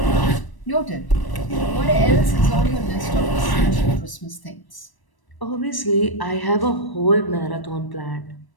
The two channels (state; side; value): late; right; 1.0 ms